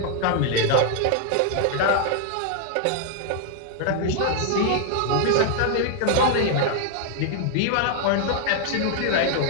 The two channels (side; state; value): both; different; correlation 0.00